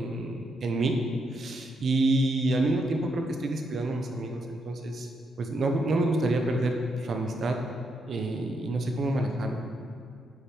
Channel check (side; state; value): both; normal; correlation 0.79